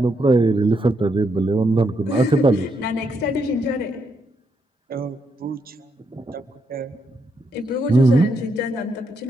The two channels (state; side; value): normal; both; correlation 0.79